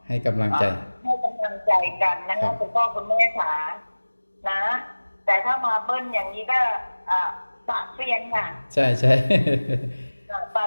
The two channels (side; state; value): both; inverted; correlation -1.00